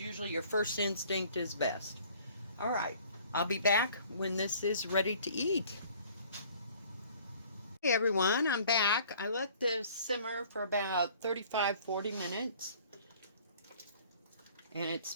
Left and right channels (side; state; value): both; inverted; correlation -0.53